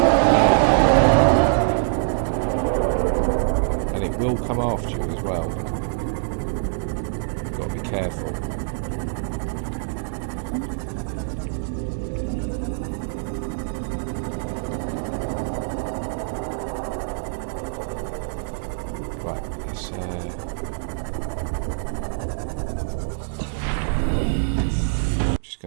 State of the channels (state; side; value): silent; left; digital silence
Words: And it will come after you as well. Got to be careful. Right, let's